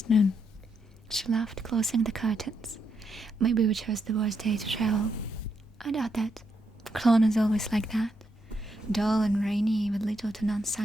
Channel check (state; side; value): normal; both; correlation 0.80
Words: noon. She laughed, closing the curtains. Maybe we chose the worst day to travel. I doubt that. Cologne is always like that. Dull and rainy with little to none